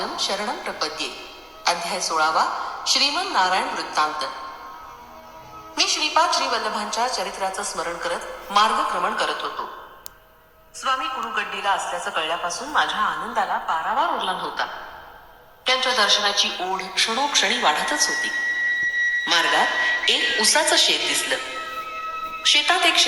शरणम प्रपद्ये. अध्याय 16. श्रीमन नारायण वृत्तांत. मी श्रीपाद श्री वल्लभांच्या चरित्राचं स्मरण करत मार्गक्रमण करत होतो. स्वामी कुरुगड्डीला असल्याचं कळल्यापासून माझ्या आनंदाला पारावार उरला नव्हता. त्यांच्या दर्शनाची ओढ क्षणोक्षणी वाढतच होती. मार्गात एक उसाचं शेत दिसलं. शेतात एक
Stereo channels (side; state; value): both; identical; correlation 1.00